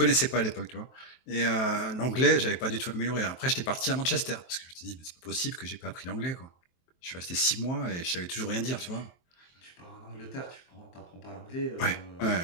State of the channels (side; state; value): right; late; 23 ms